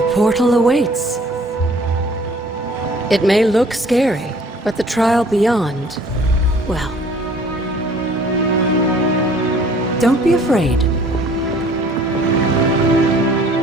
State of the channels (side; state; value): both; normal; correlation 0.54